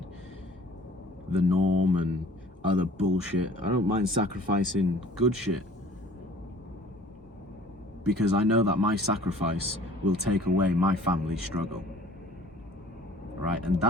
the norm and other bullshit. I don't mind sacrificing good shit. Because I know that my sacrifice will take away my family's struggle. Right? And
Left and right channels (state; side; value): normal; both; correlation 0.51